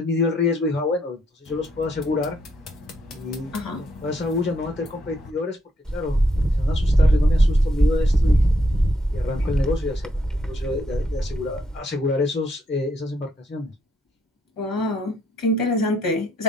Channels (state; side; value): normal; both; correlation 0.75